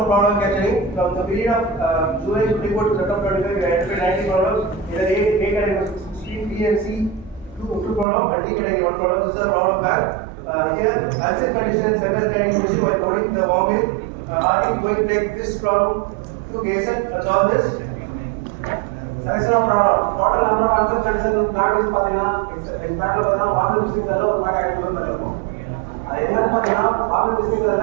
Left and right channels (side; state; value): left; drops out; at 8.1 s